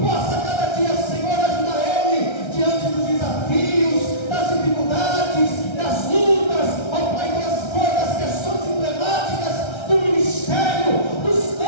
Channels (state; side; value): late; right; 1.3 ms